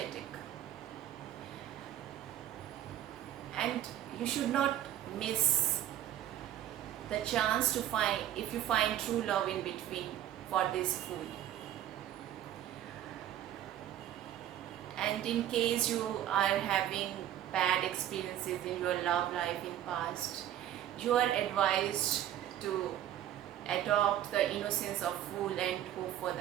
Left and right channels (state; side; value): quieter; left; 11.8 dB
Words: And you should not miss the chance to find, if you find true love in between, for this fool. And in case you are having bad experiences in your love life in past, you are advised to adopt the innocence of fool and hope for